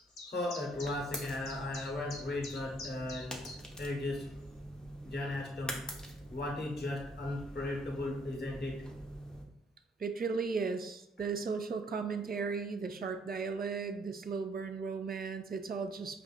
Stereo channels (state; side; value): normal; both; correlation 0.65